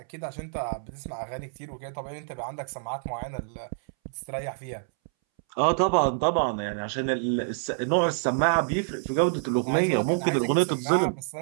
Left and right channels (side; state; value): left; silent; 60 dB below the other